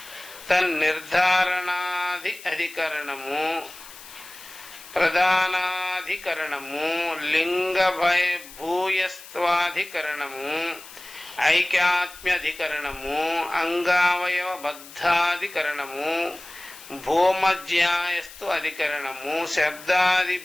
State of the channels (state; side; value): noise; left; hiss, 17 dB below the sound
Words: తన్నిర్ధారణాది అధికరణము, ప్రధానాధికరణము, లింగ భూయస్త్వాధికరణము, ఐక్యాత్మ్యధికరణము, అంగావయవ బద్ధాధికరణము, భూమజ్యాయస్తు అధికరణము, శబ్దాది